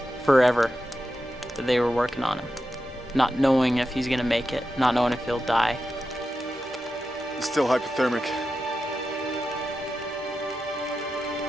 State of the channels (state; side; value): normal; both; correlation 0.90